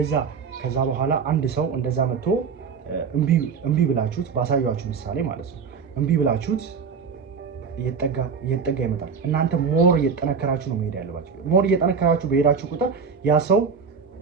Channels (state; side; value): quieter; left; 5.8 dB